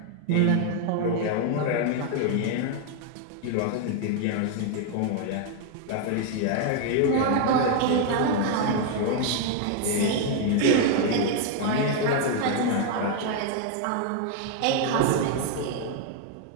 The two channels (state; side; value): different; both; correlation 0.00